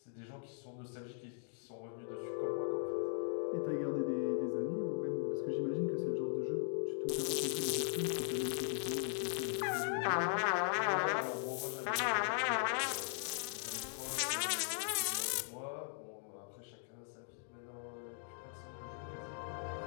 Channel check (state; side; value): silent; right; digital silence